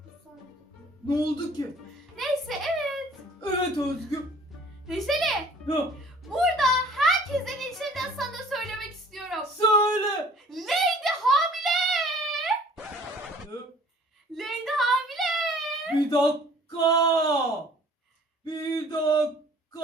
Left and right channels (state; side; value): normal; both; correlation 0.52